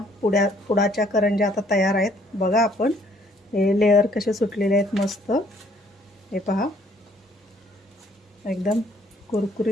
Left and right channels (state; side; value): normal; both; correlation 0.63